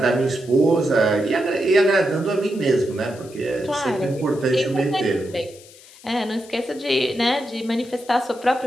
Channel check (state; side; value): noise; left; hiss, 22 dB below the sound